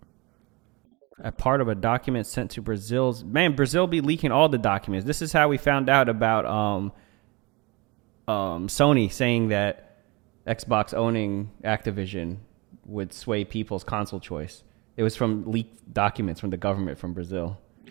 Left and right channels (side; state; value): left; quieter; 25.9 dB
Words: A part of a document sent to Brazil be leaking all the documents. This is how we found out about Sony saying that Xbox owning Activision would sway people's console choice. It was from leaked documents from the government from Brazil.